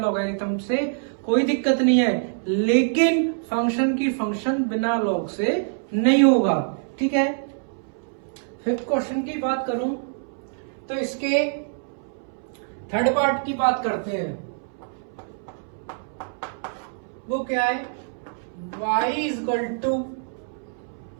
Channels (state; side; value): silent; left; 62 dB below the other